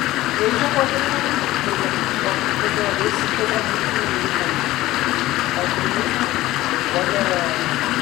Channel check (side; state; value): right; quieter; 16.7 dB